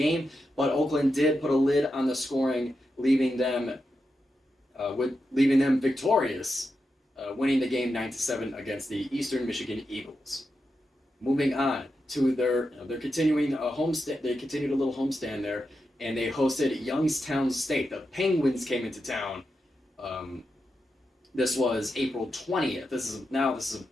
But Oakland did put a lid on the scoring, leaving them victorious, winning the game 9-7 against the Eastern Michigan Eagles. Moving on to they're continuing a homestand. They continued a little homestand there, and they hosted Youngstown State. The Penguins came into town. This was April 20th. This is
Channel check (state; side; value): normal; both; correlation 0.88